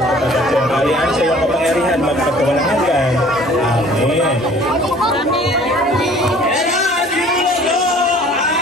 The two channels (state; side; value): normal; both; correlation 0.51